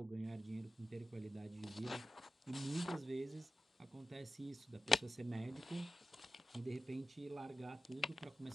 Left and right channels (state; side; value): normal; both; correlation 0.92